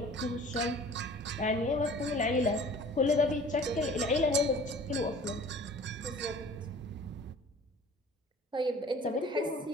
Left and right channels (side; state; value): both; normal; correlation 0.46